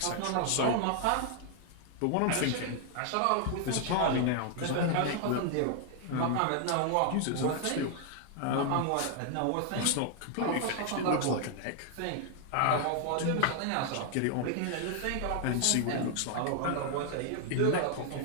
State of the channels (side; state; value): both; different; correlation 0.00